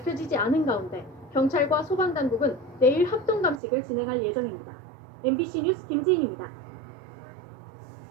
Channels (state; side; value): drops out; left; at 3.6 s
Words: 않은 가운데 경찰과 소방당국은 내일 합동 감식을 진행할 예정입니다. MBC 뉴스 김지인입니다.